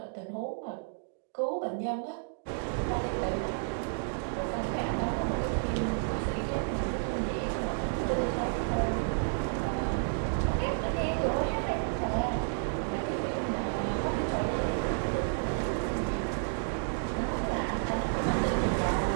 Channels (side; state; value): left; silent; digital silence